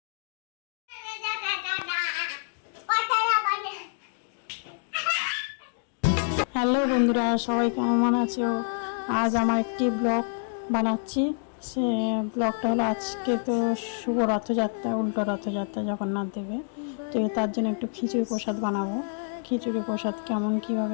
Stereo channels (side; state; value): right; silent; digital silence